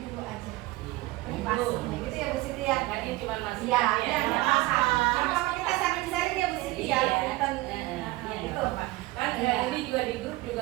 aja privasinya gitu ya Bu Siti ya. Kan ini cuma masih Iya, ya, nggak masalah. Yang pertama kita sharing-sharing ya Bu Siti ya. Punten. Iya, Gitu. kan ini juga di grup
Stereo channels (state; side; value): quieter; left; 19.4 dB